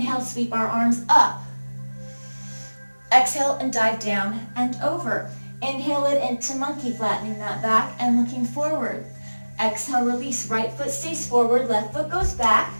sweep our arms up. Exhale and dive down and over. Inhale it into monkey, flattening that back and looking forward. Exhale, release. Right foot stays forward, left foot goes back.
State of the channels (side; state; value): both; inverted; correlation -1.00